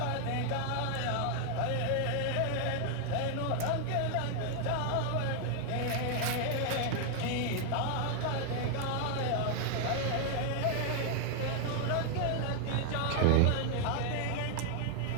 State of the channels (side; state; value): both; different; correlation 0.00